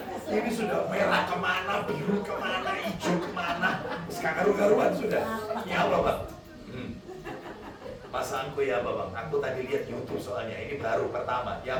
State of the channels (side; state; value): both; identical; correlation 1.00